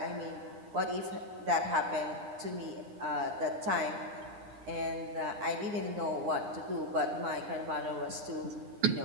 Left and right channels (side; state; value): left; late; 9.7 ms